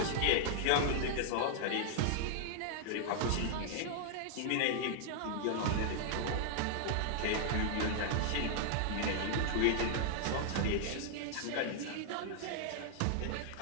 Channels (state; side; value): different; both; correlation -0.01